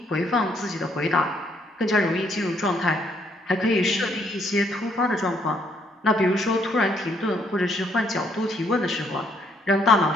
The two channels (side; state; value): both; normal; correlation 0.69